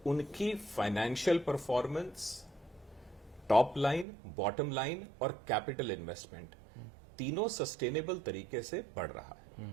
उनकी financial performance, top line, bottom line और कैपिटल इन्वेस्टमेंट तीनों सस्टेनेबल तरीके से बढ़ रहा है।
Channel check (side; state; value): left; drops out; at 4.0 s